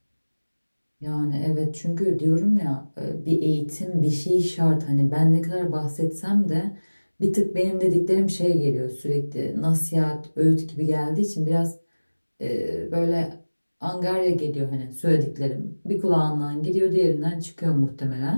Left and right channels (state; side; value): inverted; both; correlation -1.00